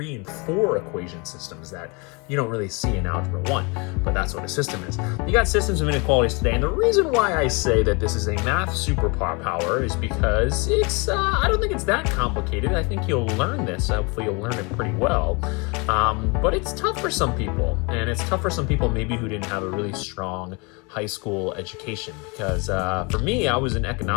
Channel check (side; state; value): right; quieter; 29.9 dB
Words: and 4 equation systems that you don't really see in Algebra 1, but that's what a system is. You got systems of inequalities today, and the reason why I say that this is a math superpower is because it's, I don't think it's that complicated. I think you'll learn this. Hopefully you'll learn it pretty well, but it's tough for some people, and it's tough for some people maybe who didn't have a really strong high school education, because for me, I was an